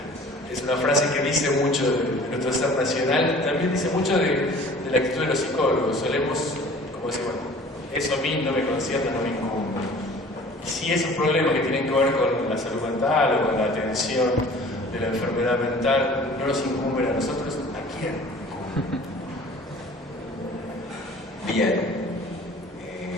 Es una frase que dice mucho de nuestro ser nacional, también dice mucho de la actitud de los psicólogos. Solemos, como decir, bueno, eso a mí no me concierne, no me incumbe. Y si esos problemas que tienen que ver con la salud mental o con la atención de la enfermedad mental no nos incumben a nosotros, ¿a quién? Bien,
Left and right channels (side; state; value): both; normal; correlation 0.47